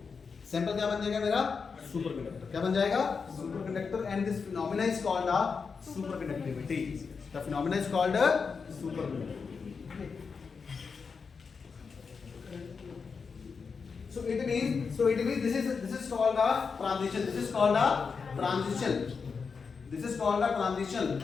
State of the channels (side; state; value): right; quieter; 5.4 dB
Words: सैंपल क्या बन जाएगा मेरा? सुपरकंडक्टर. क्या बन जाएगा? Superconductor. And this phenomena is called a superconductivity. The phenomenon is called a superconductivity. So it means this is called a transition. This is called a transition.